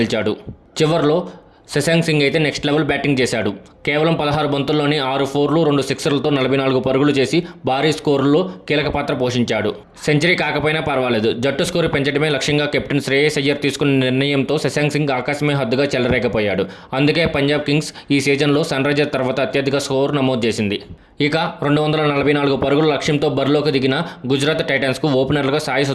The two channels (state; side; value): identical; both; correlation 1.00